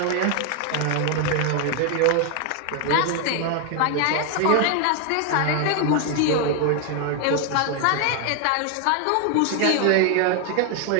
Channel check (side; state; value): both; different; correlation 0.01